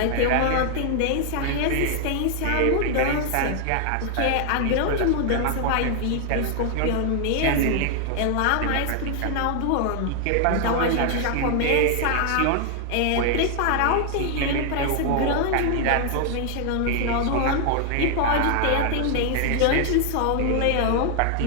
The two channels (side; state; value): both; different; correlation 0.00